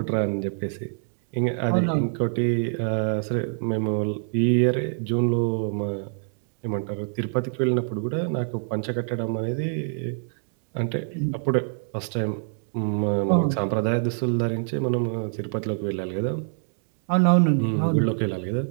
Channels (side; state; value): left; silent; digital silence